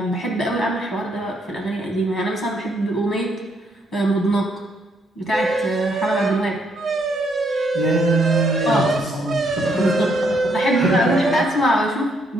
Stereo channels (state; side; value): normal; both; correlation 0.72